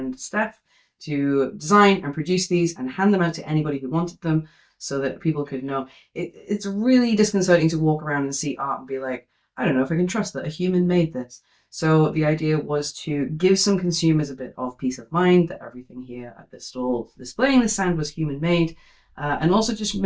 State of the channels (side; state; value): both; identical; correlation 1.00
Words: Steph, to design and produce these and hand them out to anybody who wanted them so that people could know. It's really disconcerting to walk around and see art and be like, I don't know if I can trust that a human made this. So the idea was to give some consumers a bit of peace of mind that everything here at this stall displaying the stand was human made. And also just